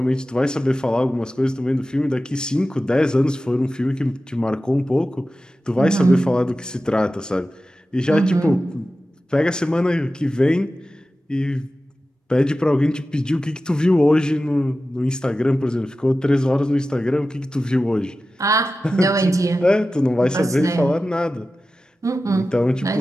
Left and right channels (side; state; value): both; normal; correlation 0.94